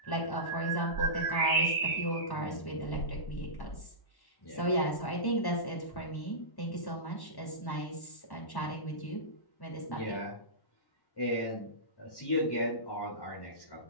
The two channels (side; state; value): right; late; 1.1 ms